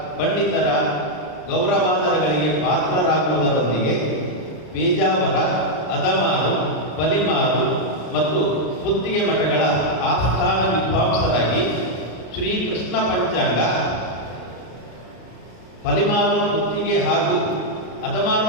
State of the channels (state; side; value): late; right; 33 ms